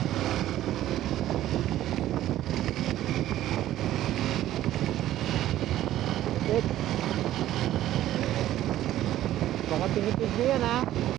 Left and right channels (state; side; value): quieter; left; 13.5 dB